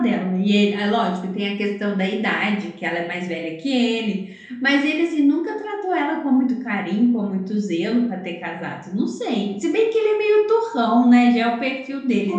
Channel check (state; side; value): identical; both; correlation 1.00